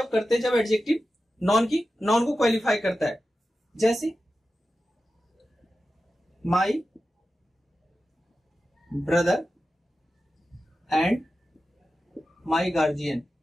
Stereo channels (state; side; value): normal; both; correlation 0.93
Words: करते हैं, जब एडजेक्टिव नॉन को क्वालिफाई करता है। जैसे my brother and my guardian.